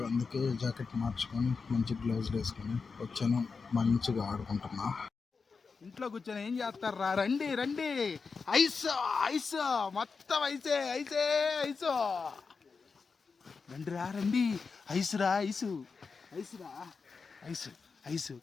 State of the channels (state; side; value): quieter; right; 4.9 dB